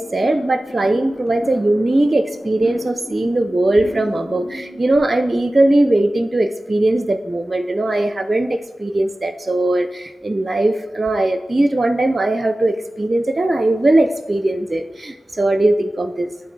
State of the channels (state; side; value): normal; both; correlation 0.96